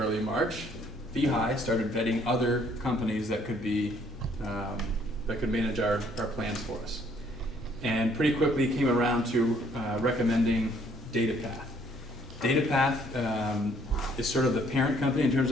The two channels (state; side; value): normal; both; correlation 0.64